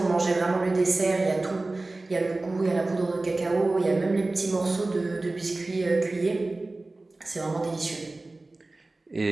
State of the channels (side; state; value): left; quieter; 3.1 dB